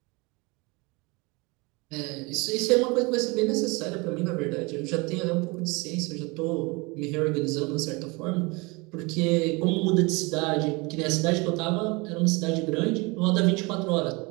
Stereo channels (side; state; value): left; quieter; 26.9 dB